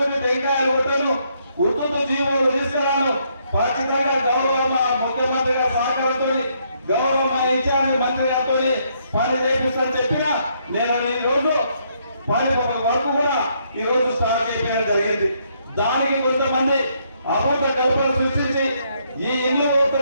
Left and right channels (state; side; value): inverted; both; correlation -0.72